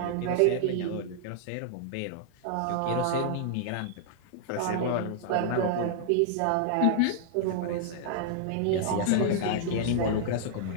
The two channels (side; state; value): both; different; correlation -0.01